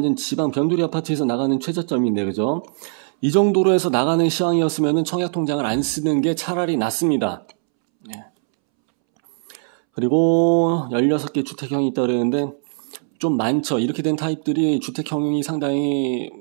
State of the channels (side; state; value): left; silent; 65 dB below the other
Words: 지방 변두리 아파트에서 나가는 최저점인데, 그죠? 이 정도로 해서 나가는 시황이었으면 청약 통장을 안 쓰는 게 차라리 낫습니다. 예. 그리고 16개 주택형이 있다 그랬는데 좀 많죠. 이렇게 된 타입들이 주택형이 상당히